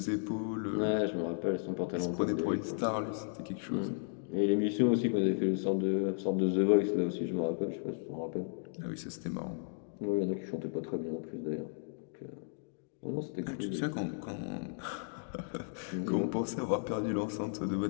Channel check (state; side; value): silent; right; digital silence